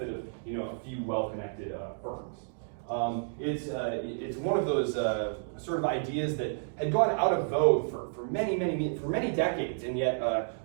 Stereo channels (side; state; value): left; silent; digital silence